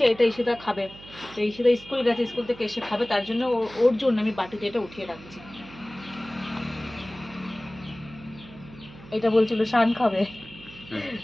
এটা ঈশিতা খাবে, তো ঈশিতা স্কুল গেছে, স্কুল থেকে এসে খাবে, তার জন্য ওর জন্য আমি বাটিতে এটা উঠিয়ে রাখছি। এটা বলছিল শান খাবে,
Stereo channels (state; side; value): noise; right; hum, 19 dB below the sound